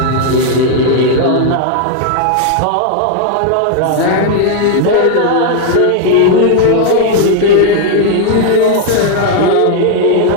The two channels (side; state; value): both; different; correlation 0.00